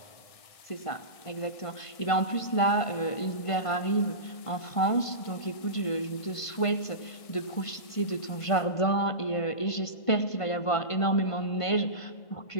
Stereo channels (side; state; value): right; late; 1.5 ms